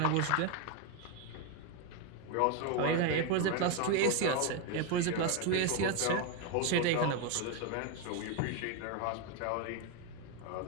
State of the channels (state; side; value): different; both; correlation 0.02